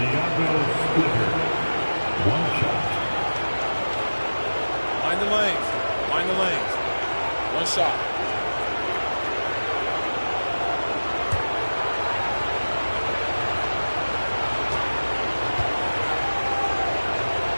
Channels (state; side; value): inverted; both; correlation -1.00